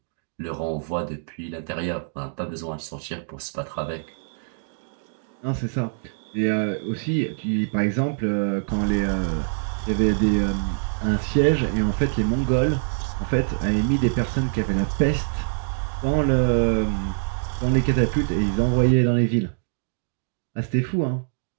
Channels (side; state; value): left; silent; digital silence